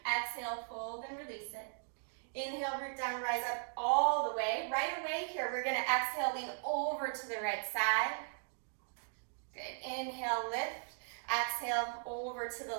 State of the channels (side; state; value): left; silent; digital silence